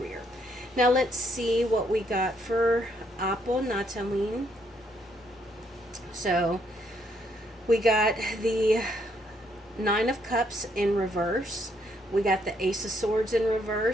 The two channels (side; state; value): both; normal; correlation 0.72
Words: Now let's see what we got for Apo Nattawin. So we got the Nine of Cups in reverse, We got the Ace of Swords in